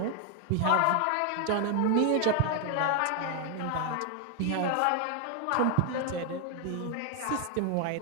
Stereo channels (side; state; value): both; different; correlation 0.00